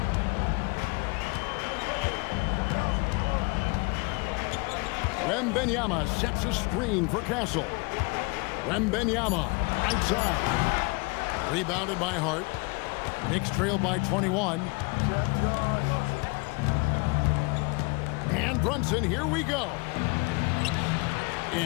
Wembanyama sets a screen for Castle. Wembanyama, right side. Rebounded by Hart. Knicks trail by 21. And Brunson, here we go.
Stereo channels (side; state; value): right; quieter; 28.8 dB